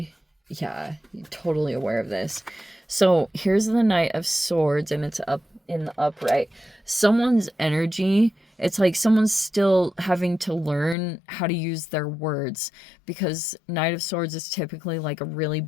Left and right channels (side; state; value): right; drops out; at 11.0 s